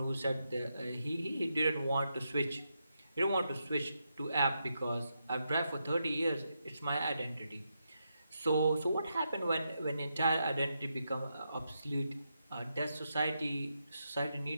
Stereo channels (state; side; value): inverted; both; correlation -0.84